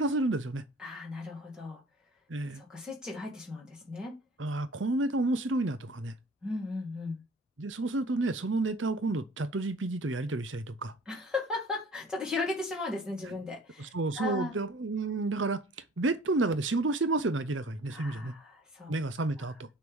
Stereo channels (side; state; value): both; normal; correlation 0.49